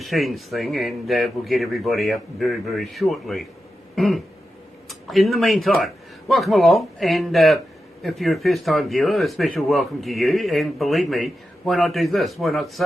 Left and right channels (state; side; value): normal; both; correlation 0.90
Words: thing, and we'll get everybody up very, very shortly. In the meantime, welcome along, and if you're a first-time viewer, a special welcome to you, and believe me, why not do this? Why not